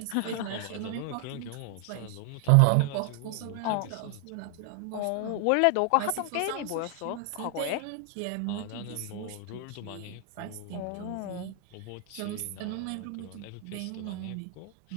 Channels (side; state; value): both; different; correlation 0.00